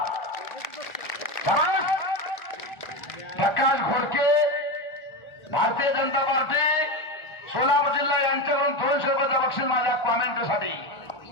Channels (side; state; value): right; late; 1.4 ms